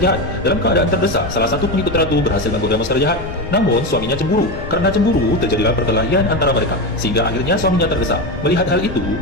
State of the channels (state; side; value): noise; left; rumble, 12 dB below the sound